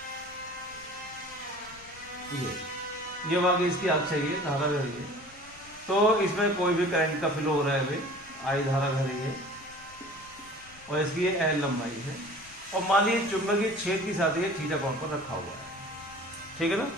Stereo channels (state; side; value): noise; left; rumble, 24 dB below the sound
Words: ये वाकई इसकी अक्ष है, ये धारा है ये। तो इसमें कोई भी करंट का फ्लो हो रहा है भाई, आई धारा घर है, और इसकी ये L लंबाई है, और मान लीजिए चुंबकीय क्षेत्र के साथ ये थीटा कोण पर रखा हुआ है, ठीक है ना,